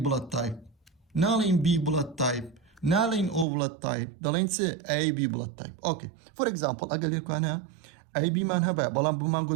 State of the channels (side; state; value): left; drops out; at 3.5 s